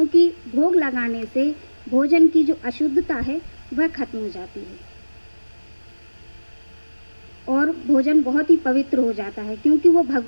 भोग लगाने से भोजन की जो अशुद्धता है वह खत्म हो जाती है और भोजन बहुत ही पवित्र हो जाता है, क्योंकि वो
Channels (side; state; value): both; inverted; correlation -1.00